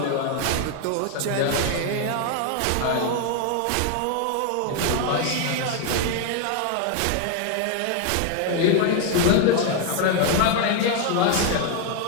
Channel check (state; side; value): different; both; correlation 0.01